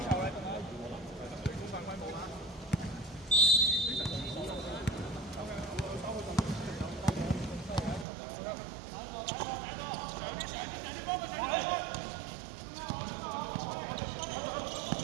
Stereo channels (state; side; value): drops out; left; at 8.1 s